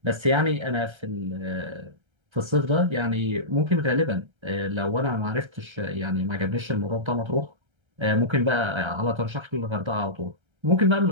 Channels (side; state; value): left; late; 1.3 ms